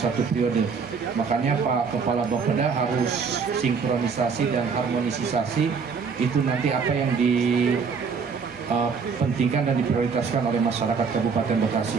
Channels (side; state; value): left; quieter; 5.5 dB